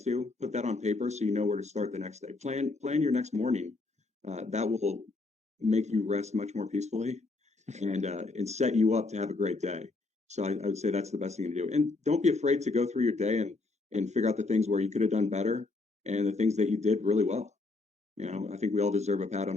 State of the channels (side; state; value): right; quieter; 3.5 dB